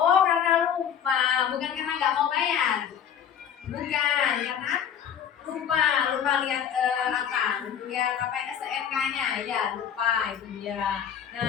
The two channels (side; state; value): right; quieter; 8.6 dB